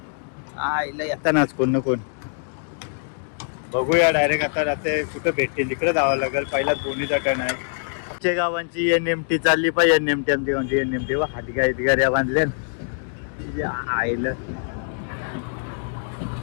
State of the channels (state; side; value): silent; right; digital silence